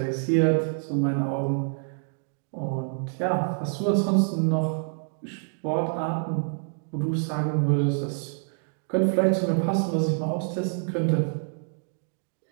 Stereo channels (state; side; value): silent; left; 60 dB below the other